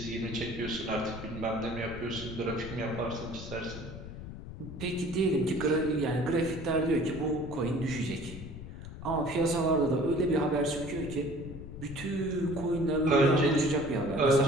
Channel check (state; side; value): noise; left; rumble, 11 dB below the sound